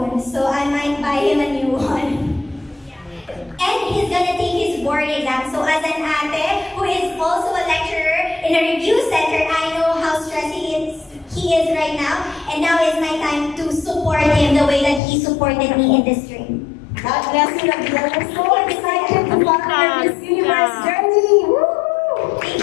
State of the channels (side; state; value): right; drops out; at 15.0 s